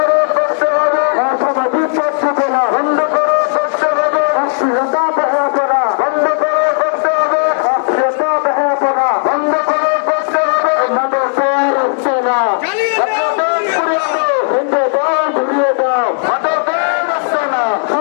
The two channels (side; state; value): right; silent; digital silence